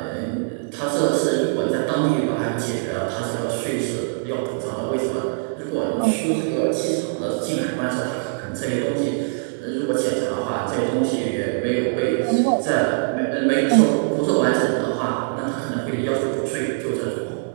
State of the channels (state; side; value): silent; left; 64 dB below the other